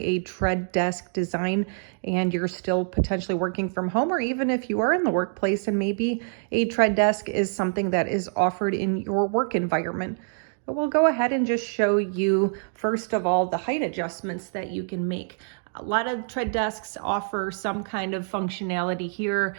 tread desk design and you're still potentially working from home, or even if you are in the workplace and maybe a tread desk is something that is offered in your work environment. But we'll go ahead and just show you, first of all, the height adjustments that you can make. A lot of tread desks offer some kind of functionality here.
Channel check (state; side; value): silent; left; 61 dB below the other